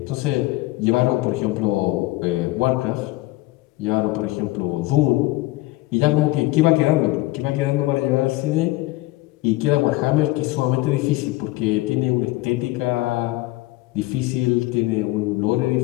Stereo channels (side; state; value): right; quieter; 19.4 dB